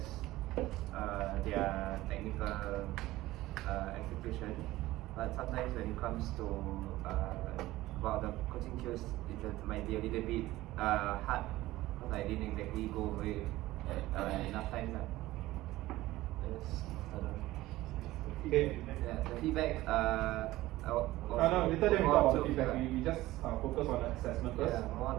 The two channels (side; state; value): left; quieter; 17.1 dB